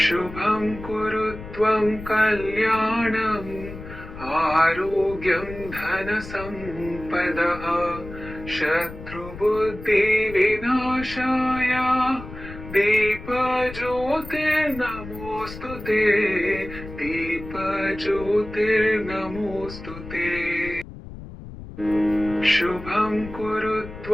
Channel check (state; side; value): noise; left; rumble, 13 dB below the sound